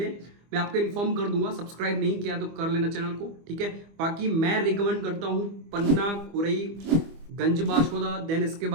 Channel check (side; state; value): left; late; 25 ms